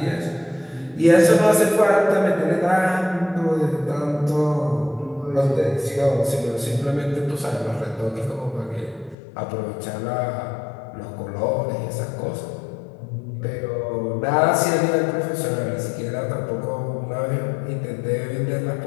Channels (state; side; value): drops out; right; at 9.2 s